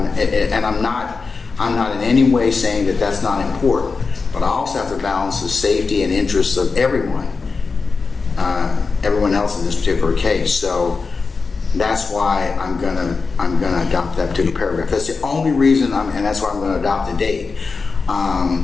not in any way saying that that's not important. But I also have to balance the safety and interests of everyone else in this particular case. So that's why I'm gonna adopt that particular paragraph. That's the only reason and that's why I'm gonna adopt the date.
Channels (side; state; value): right; quieter; 4.5 dB